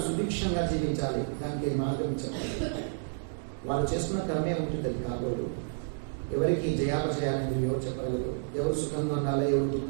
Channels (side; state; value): left; silent; digital silence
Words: సుభిక్షంగా జీవించాలి. దానికి మార్గం చెప్పాలి. వాళ్ళు చేసుకున్న కర్మే ఉంటుంది. అది కాబోడు ఎవరికి జయాపజయాలనేది ఎవరు చెప్పగలరు? ఎవరు సుఖంగా ఉండాలి, ఎవరు